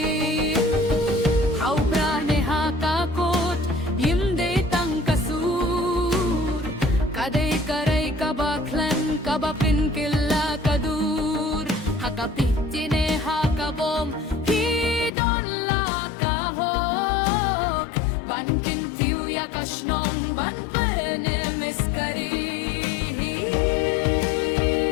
Ha uprane ha kakot yimde tang kasur kadai karai kabaklan kabapin killa kadur hakapitine hakabom hidon la kahok bankin tiu yakashnong ban pene miskari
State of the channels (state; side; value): drops out; right; at 15.1 s